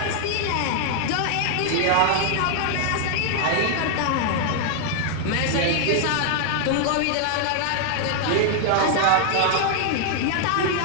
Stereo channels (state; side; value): different; both; correlation 0.00